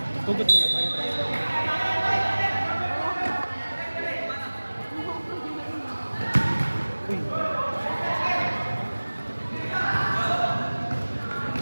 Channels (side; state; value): both; inverted; correlation -1.00